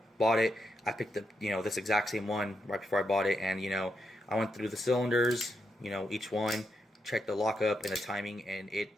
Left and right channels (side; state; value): both; normal; correlation 0.83